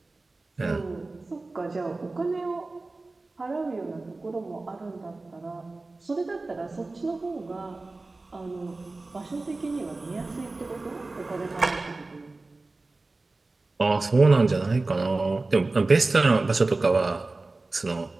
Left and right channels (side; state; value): left; quieter; 3.3 dB